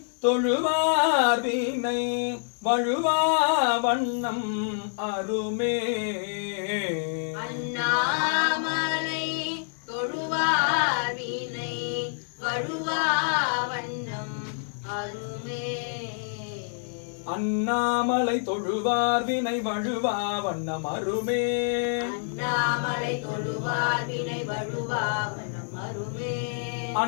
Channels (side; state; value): right; silent; digital silence